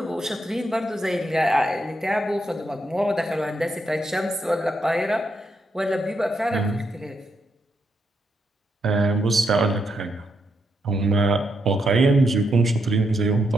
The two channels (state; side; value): normal; both; correlation 0.80